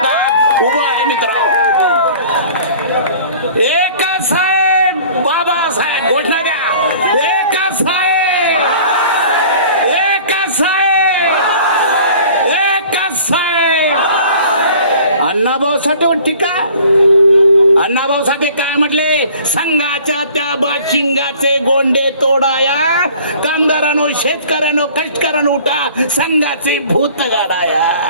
उभा आहे. मित्रांनो, एकच साहेब बाबासाहेब घोषणा द्या. एकच साहेब, एकच साहेब, एकच साहेब. अण्णाभाऊ साठे टीका. अण्णाभाऊ साठे काय म्हटले? संघाच्या त्या बाशिंगाचे गोंडे तोडाया, कामगारांनो शेतकऱ्यांनो कष्टकऱ्यांनो उठा, संघाचे भूत गाडाया.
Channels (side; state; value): both; inverted; correlation -0.48